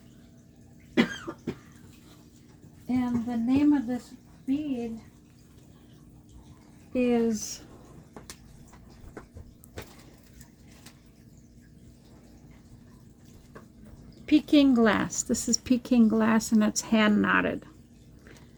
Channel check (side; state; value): both; identical; correlation 1.00